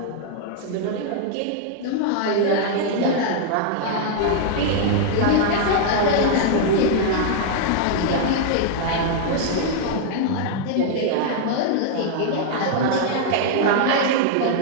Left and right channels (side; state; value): both; different; correlation -0.01